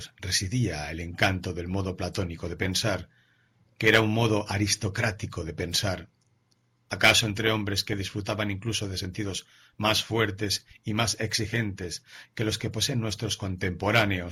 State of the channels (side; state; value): both; identical; correlation 1.00